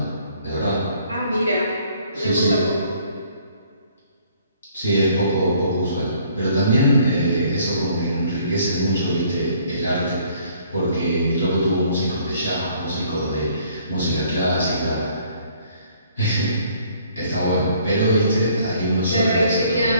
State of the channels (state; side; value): inverted; both; correlation -0.61